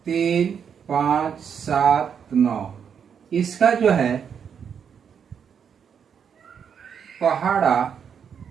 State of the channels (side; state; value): left; quieter; 7.4 dB